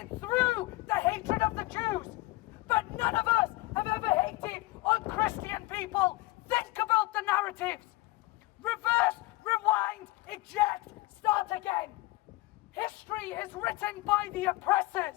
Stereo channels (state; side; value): quieter; right; 20.4 dB